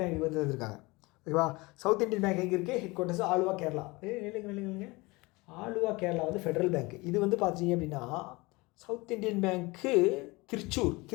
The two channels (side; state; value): right; quieter; 23.8 dB